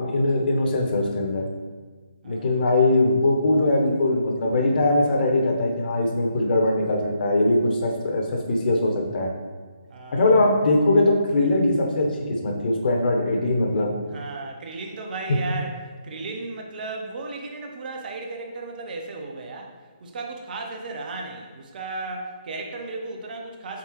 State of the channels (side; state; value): both; inverted; correlation -0.76